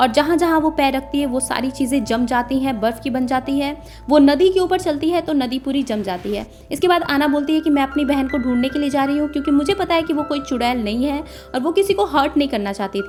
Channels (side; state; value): both; identical; correlation 1.00